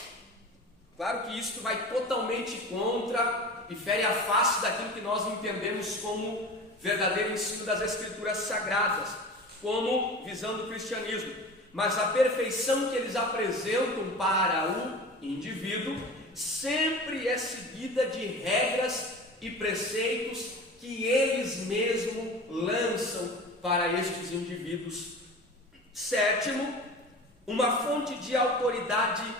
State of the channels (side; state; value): both; normal; correlation 0.35